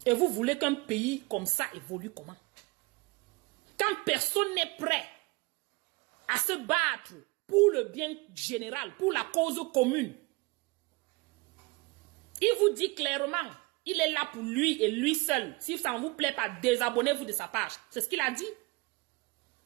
Et vous voulez qu'un pays comme ça évolue comment? Quand personne n'est prêt à se battre pour le bien général, pour la cause commune. Il vous dit clairement, il est là pour lui et lui seul. Si ça ne vous plaît pas, désabonnez-vous de sa page. C'est ce qu'il a dit.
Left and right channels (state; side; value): quieter; left; 25.6 dB